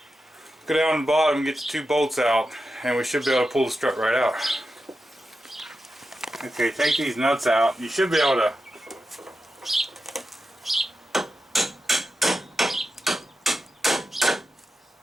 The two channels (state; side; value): normal; both; correlation 0.90